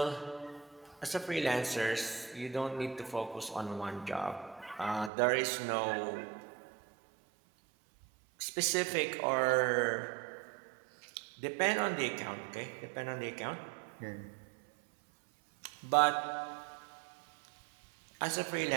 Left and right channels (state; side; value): drops out; left; at 5.1 s